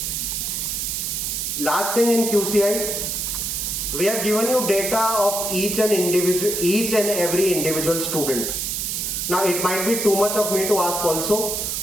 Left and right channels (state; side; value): noise; right; hiss, 2 dB below the sound